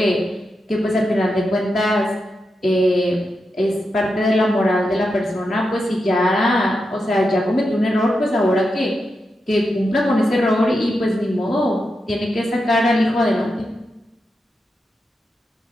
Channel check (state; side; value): normal; both; correlation 0.87